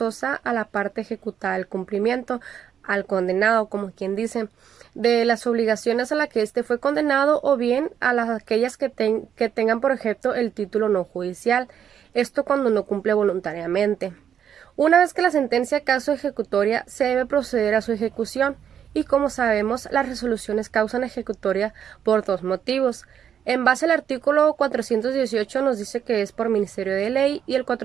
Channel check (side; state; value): left; quieter; 8.7 dB